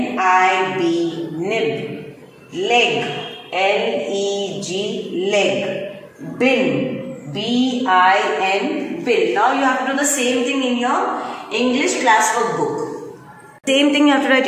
Nib. Leg. L-E-G. Leg. Bin. B-I-N. Bin. Now you have to do the same thing in your English classwork book. Same thing you have to write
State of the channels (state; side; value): identical; both; correlation 1.00